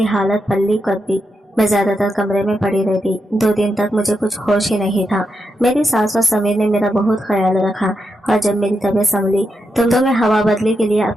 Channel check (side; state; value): both; normal; correlation 0.84